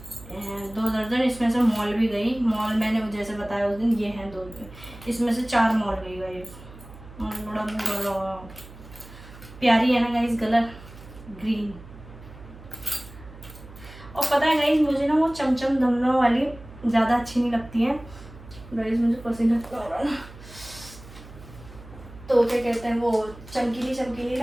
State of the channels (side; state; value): right; noise; hum, 18 dB below the sound